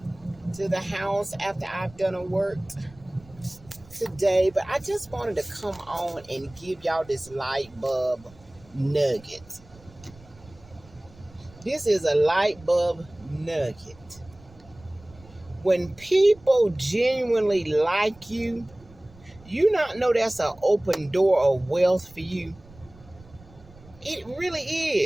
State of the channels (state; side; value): noise; right; rumble, 24 dB below the sound